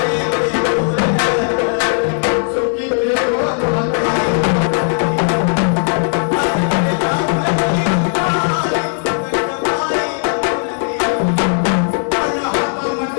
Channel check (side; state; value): right; silent; 62 dB below the other